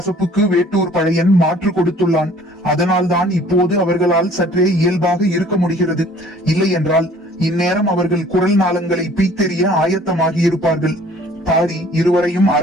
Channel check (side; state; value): both; normal; correlation 0.53